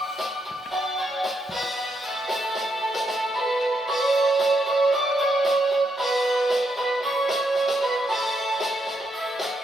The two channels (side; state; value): both; normal; correlation 0.79